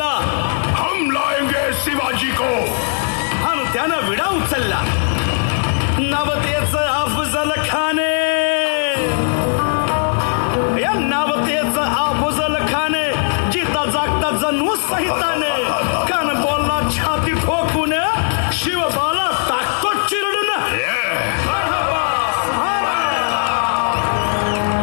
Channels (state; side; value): silent; right; digital silence